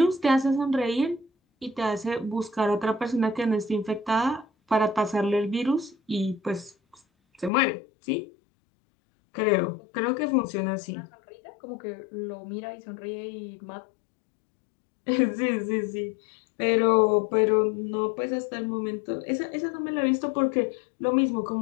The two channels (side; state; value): right; drops out; at 7.5 s